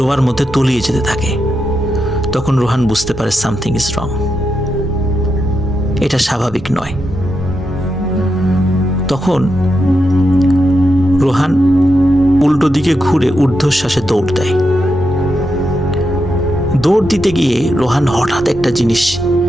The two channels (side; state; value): both; normal; correlation 0.85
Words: মধ্যে তলিয়ে যেতে থাকে। তখন রোহান বুঝতে পারে সামথিং ইজ রং, এটা স্বাভাবিক নয়। তখন রোহান উল্টো দিকে ঘুরে ঊর্ধ্বশ্বাসে দৌড় দেয়। দৌড় দিতে গিয়ে রোহান হঠাৎ একটা জিনিস